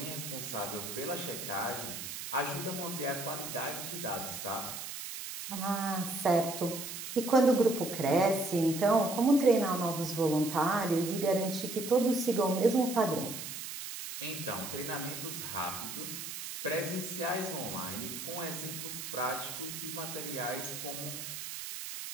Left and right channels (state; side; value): noise; right; hiss, 7 dB below the sound